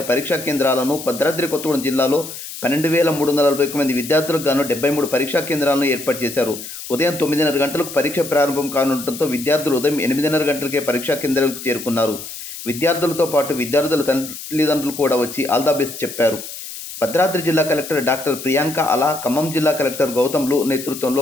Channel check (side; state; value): left; noise; hiss, 11 dB below the sound